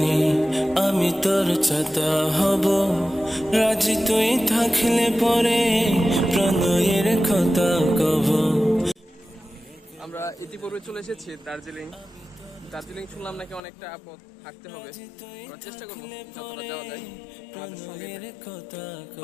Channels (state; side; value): drops out; right; at 13.6 s